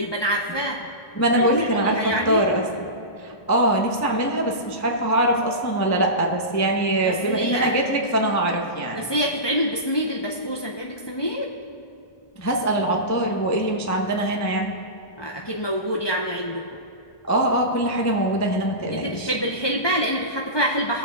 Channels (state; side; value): late; right; 1.2 ms